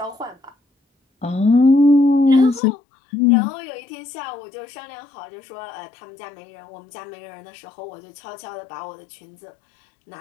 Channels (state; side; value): drops out; right; at 2.6 s